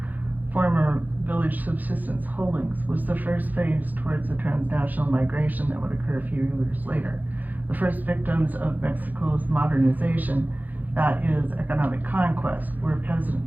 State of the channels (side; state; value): left; late; 0.083 ms